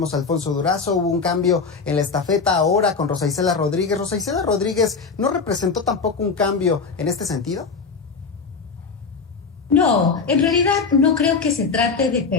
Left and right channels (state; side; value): quieter; right; 5.0 dB